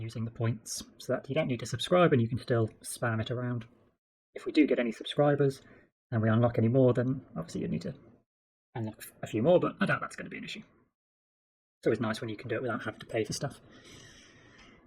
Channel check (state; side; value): identical; both; correlation 1.00